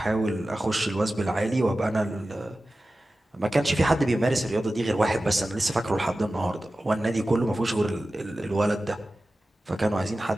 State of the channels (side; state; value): both; normal; correlation 0.95